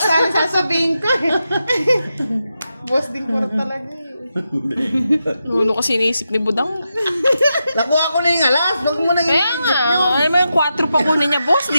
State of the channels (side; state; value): both; inverted; correlation -0.88